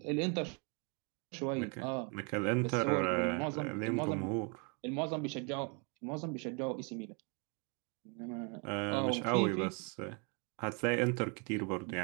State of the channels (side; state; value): left; quieter; 35.3 dB